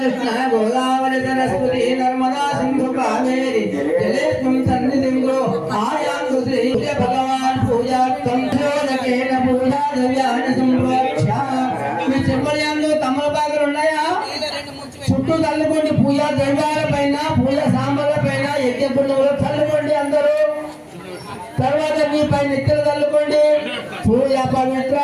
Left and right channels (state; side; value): identical; both; correlation 1.00